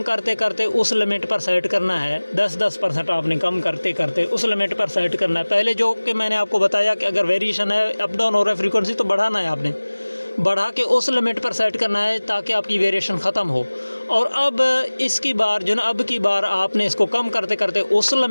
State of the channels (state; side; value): inverted; both; correlation -1.00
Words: करते करते उस लिमिट पर सेट करना है, 10% आपने कम करते करते उस लिमिट पर सेट करना है। पहले जो कि मैंने आपको बताया कि अगर वेरिएशन है, अप डाउन हो रहा है फ्रीक्वेंसी, तो बढ़ाना है, आपने बढ़ा के उस लिमिट पर सेट करना है ताकि आपकी वेरिएशन ख़त्म हो। और अब इसकी बार जो ना, अब की बार आपने इसको कम करते करते उस